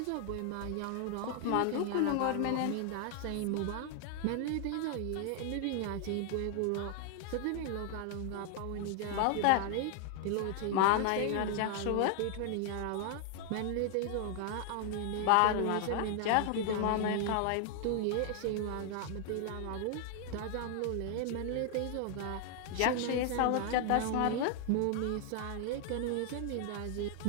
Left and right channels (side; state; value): both; different; correlation 0.00